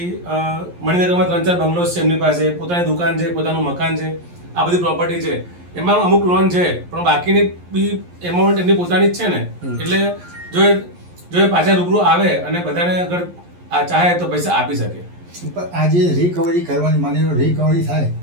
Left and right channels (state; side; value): late; left; 11 ms